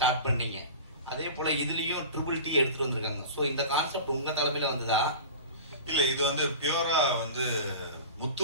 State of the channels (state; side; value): inverted; both; correlation -0.34